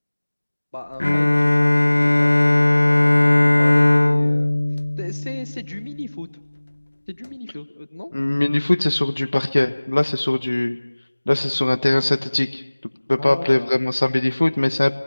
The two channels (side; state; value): both; inverted; correlation -1.00